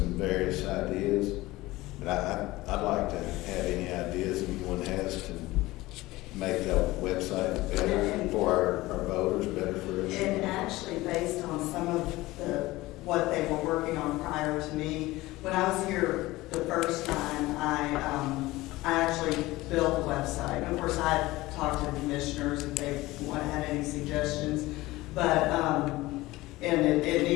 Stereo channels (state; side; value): quieter; right; 19.0 dB